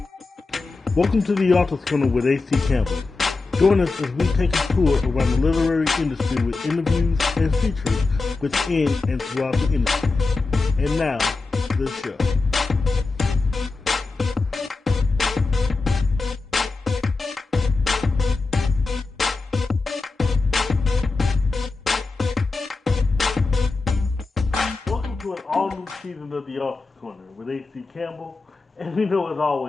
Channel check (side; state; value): right; quieter; 3.8 dB